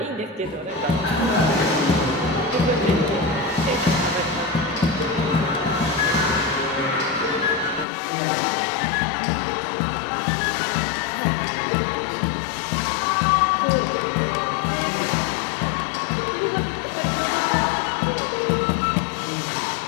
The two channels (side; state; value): right; drops out; at 7.9 s